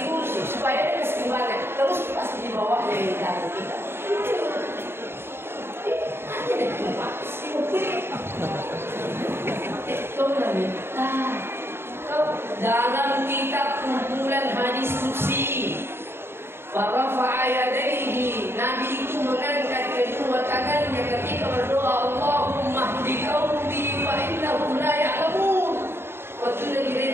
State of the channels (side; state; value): left; late; 0.11 ms